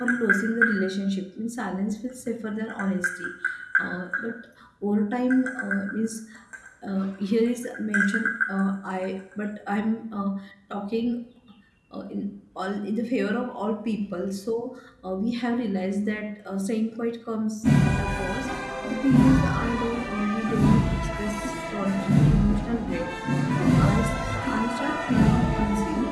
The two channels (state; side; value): identical; both; correlation 1.00